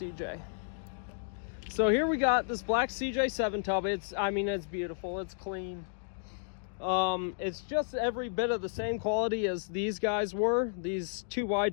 So here we got this black CJ7 tub. It's beautiful, it's clean. It's just every bit of the same quality as these guys were, these 2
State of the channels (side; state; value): right; silent; digital silence